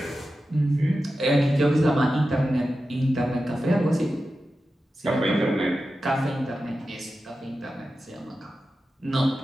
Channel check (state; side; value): normal; both; correlation 0.92